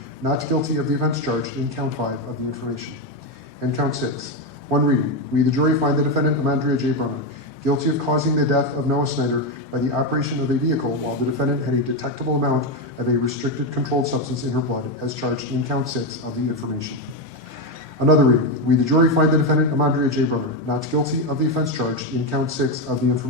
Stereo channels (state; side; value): normal; both; correlation 0.09